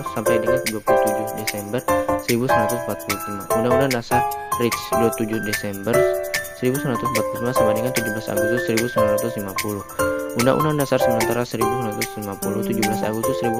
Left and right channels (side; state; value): both; identical; correlation 1.00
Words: sampai dengan 27 Desember 1945. Undang-Undang Dasar RIC 27 Desember 1945 sampai dengan 17 Agustus 1950. Undang-Undang Dasar Sementara 1950, 17 Agustus